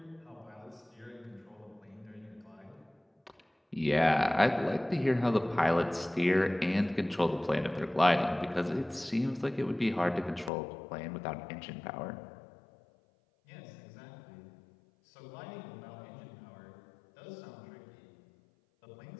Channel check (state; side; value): drops out; right; at 10.5 s